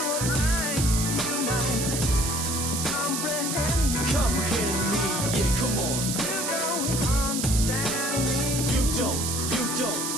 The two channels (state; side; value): noise; right; hiss, 2 dB below the sound